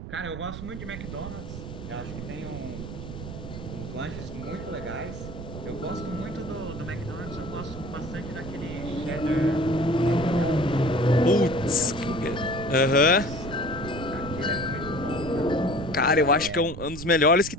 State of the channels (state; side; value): noise; right; rumble, 9 dB below the sound